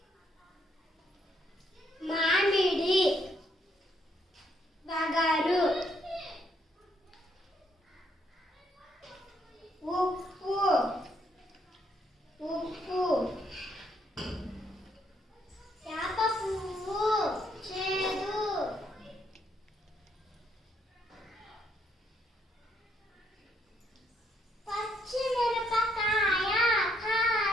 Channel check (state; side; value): normal; both; correlation 0.72